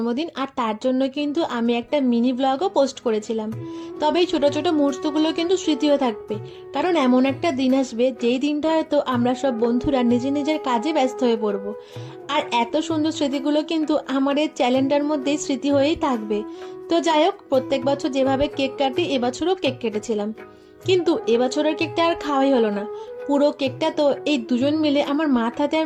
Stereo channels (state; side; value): identical; both; correlation 1.00